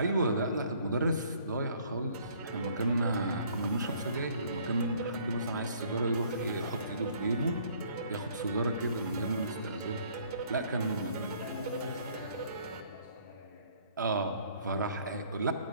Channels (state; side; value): inverted; both; correlation -0.60